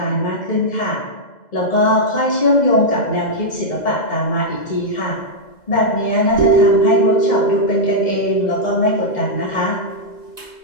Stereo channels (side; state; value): right; late; 2.1 ms